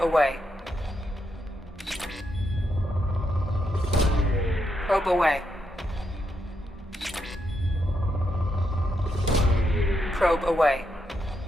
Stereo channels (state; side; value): normal; both; correlation 0.81